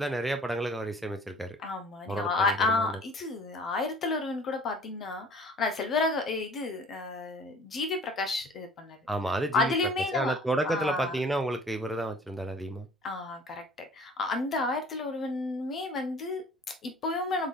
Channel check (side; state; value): both; normal; correlation 0.49